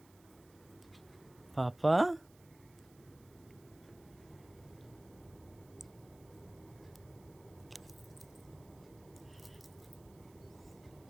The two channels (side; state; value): right; noise; hiss, 26 dB below the sound